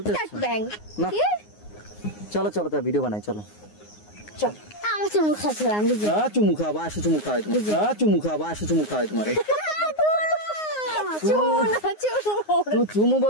না। চলো চলো, তো ভিডিও বানাই, চলো। চল, আমার চুমু খাচ্ছ, আমি চুমু খাওয়া, আসো চুমু খাওয়াই তোমার, চুমু খাওয়া, আসো চুমু খাওয়াই তোমার। চুমু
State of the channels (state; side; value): late; right; 9.6 ms